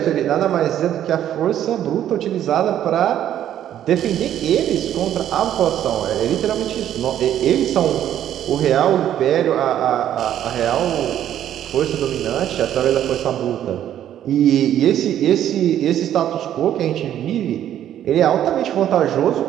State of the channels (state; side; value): quieter; left; 11.0 dB